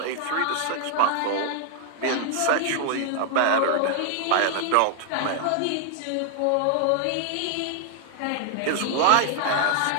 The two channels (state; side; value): different; both; correlation 0.00